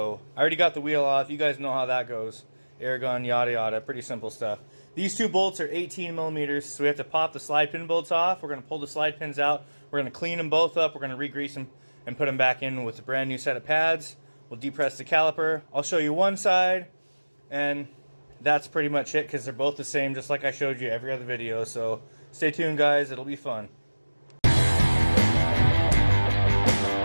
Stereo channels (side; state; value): both; inverted; correlation -1.00